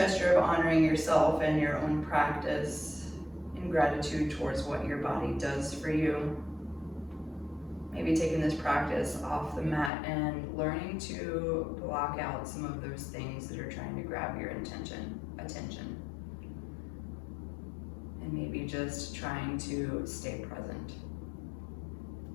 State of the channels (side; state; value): right; drops out; at 9.9 s